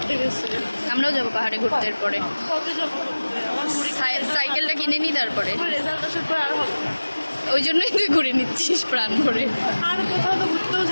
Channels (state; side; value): inverted; both; correlation -1.00